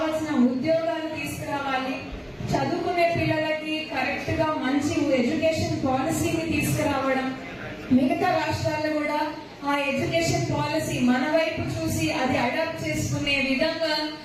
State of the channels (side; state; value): both; identical; correlation 1.00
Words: ఉద్యోగాలు తీసుకురావాలి, చదువుకునే పిల్లలకి కరెక్ట్ గా మంచి ఎడ్యుకేషన్ పాలసీని తీసుకురావడం, మిగతా రాష్ట్రాలు కూడా ఆ ఎడ్యుకేషన్ పాలసీ మన వైపు చూసి అది అడాప్ట్ చేసుకునే విధంగా